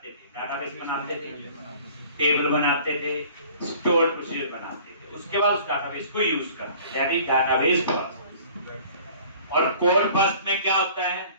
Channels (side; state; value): both; inverted; correlation -0.49